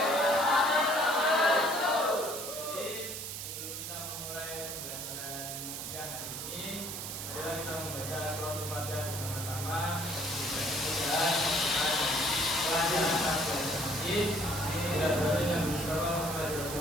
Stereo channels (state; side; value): noise; right; hiss, 6 dB below the sound